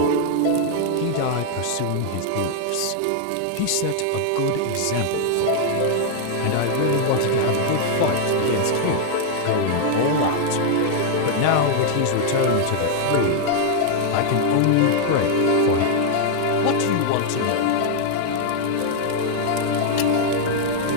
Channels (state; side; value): different; both; correlation 0.00